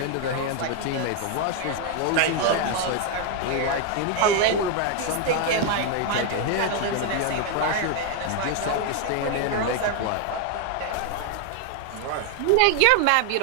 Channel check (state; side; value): different; both; correlation 0.01